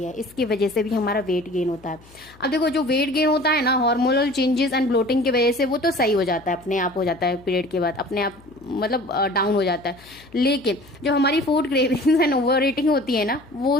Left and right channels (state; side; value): noise; left; hum, 25 dB below the sound